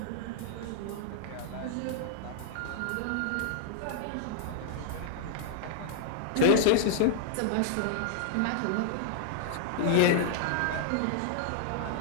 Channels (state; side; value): different; both; correlation -0.01